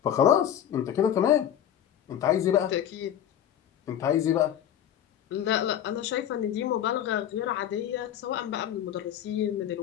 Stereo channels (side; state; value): right; quieter; 10.3 dB